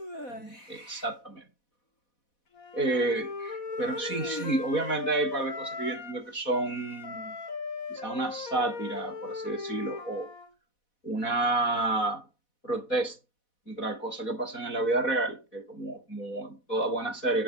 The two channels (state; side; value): late; right; 4.1 ms